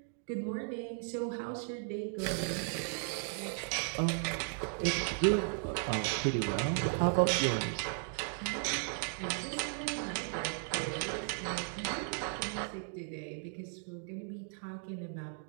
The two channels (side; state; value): left; silent; 54 dB below the other